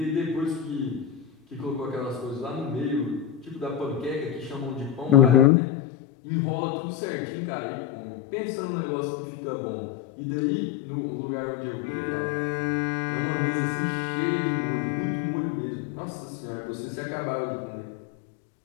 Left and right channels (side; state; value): right; drops out; at 5.5 s